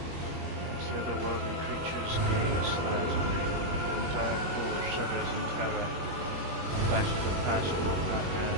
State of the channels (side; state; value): left; late; 21 ms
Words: As the otherworldly creature's gaze slides on you, the entire core shudders in terror. Flashes of past war